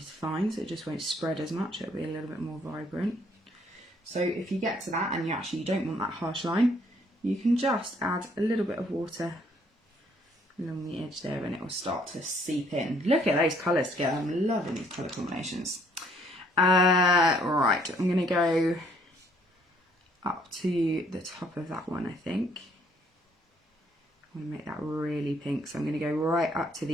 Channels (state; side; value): normal; both; correlation 0.64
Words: fine, so it just won't spread as much, it'll be a little bit more vibrant. So if you get to that and you don't want that harsh line, you can just add a little bit of water along the edge there and it will start to seep in. Look at those colours together, I'm loving these colour combinations. Right, I'm going to go up to the top of that one, I think. I want to make that really pink, so I'm going to go right up to